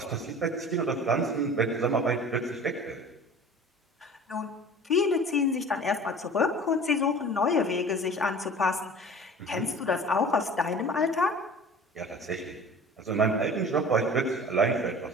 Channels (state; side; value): normal; both; correlation 0.42